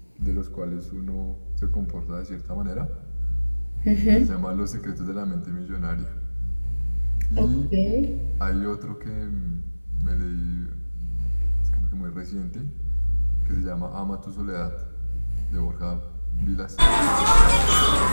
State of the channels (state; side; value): inverted; both; correlation -1.00